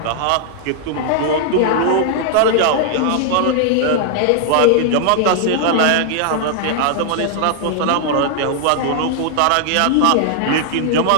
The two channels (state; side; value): different; both; correlation 0.00